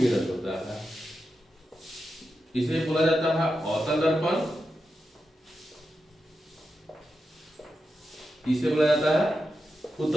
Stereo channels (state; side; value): normal; both; correlation 0.89